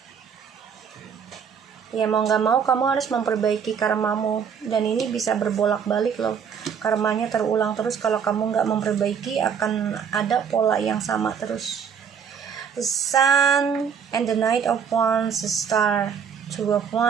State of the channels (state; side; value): quieter; left; 7.1 dB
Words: Ya, mau nggak mau kamu harus memperbaiki karmamu, dan ini bisa berbolak-balik loh, karmanya terulang terus. Kalau kamu nggak memperbaiki, akan ada pola yang sama terus. The Sun and the Knight of Wands, the Star, Two of